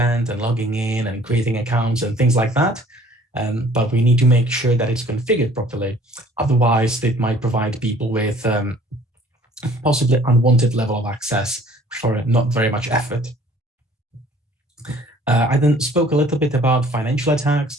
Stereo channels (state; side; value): normal; both; correlation 0.54